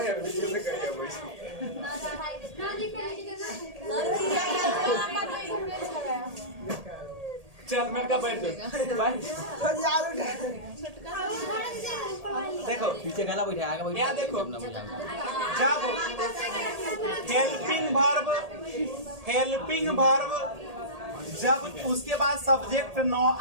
वीडियो में करिए चल मैं का बैठ देखो पीछे गला बैठा आगे बैठा। यहाँ देखो, जब हेल्पिंग वर्ब जब उसके बाद सब्जेक्ट न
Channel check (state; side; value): late; left; 1.8 ms